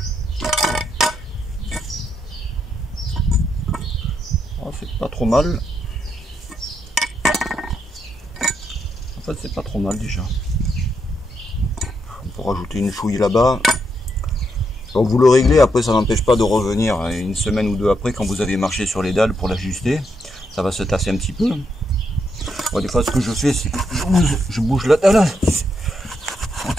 Oh, c'est pas trop mal. En fait, c'est pas trop mal déjà. On peut rajouter une chouille là-bas. Donc vous le réglez, après ça n'empêche pas de revenir une semaine ou deux après quand vous avez marché sur les dalles pour l'ajuster. Ça va se tasser un petit peu. Bon, des fois ce que je fais c'est que je bouge la dalle. On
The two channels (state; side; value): normal; both; correlation 0.80